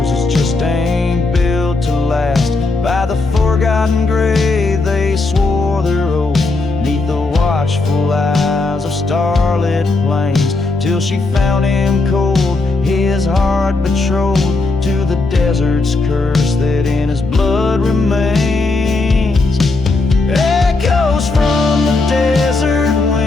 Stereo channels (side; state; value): right; quieter; 3.4 dB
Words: just ain't built to last. By the forgotten grave they swore their oath, neath the watchful eyes of starlit plains, till she found him cold, his heart betrothed to the desert's curse that in his blood remains. Echoes from the desert